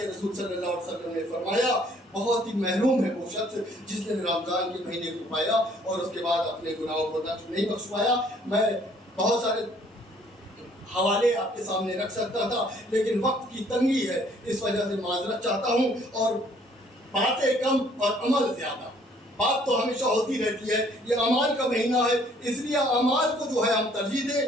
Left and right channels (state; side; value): normal; both; correlation 0.61